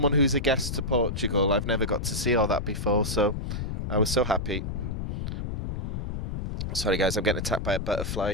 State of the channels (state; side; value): noise; left; rumble, 4 dB below the sound